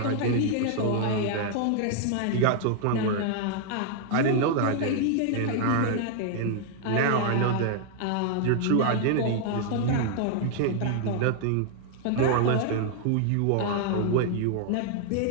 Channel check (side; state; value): both; different; correlation 0.00